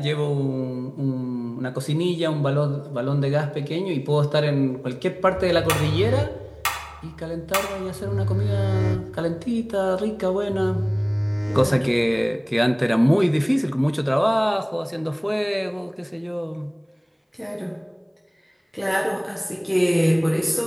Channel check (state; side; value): identical; both; correlation 1.00